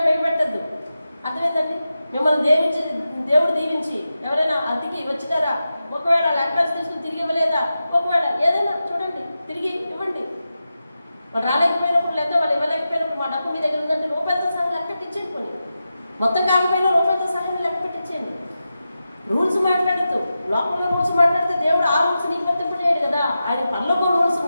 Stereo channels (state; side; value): inverted; both; correlation -0.91